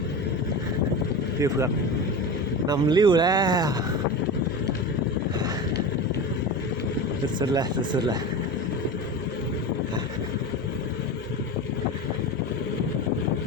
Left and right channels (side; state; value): both; normal; correlation 0.27